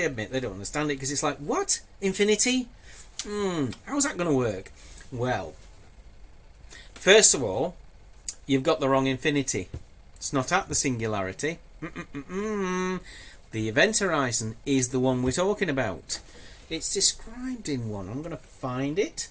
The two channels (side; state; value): both; identical; correlation 1.00